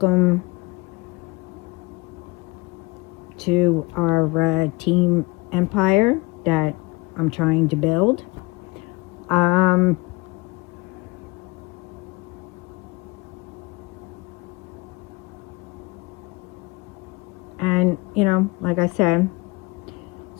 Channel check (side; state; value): right; quieter; 23.8 dB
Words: to our team empire that I'm trying to build. And, like I said,